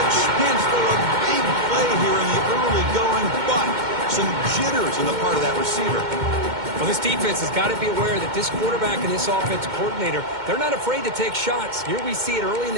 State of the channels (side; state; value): left; late; 2.1 ms